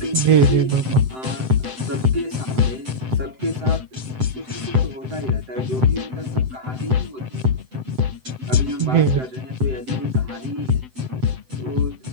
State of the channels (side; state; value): left; late; 7.8 ms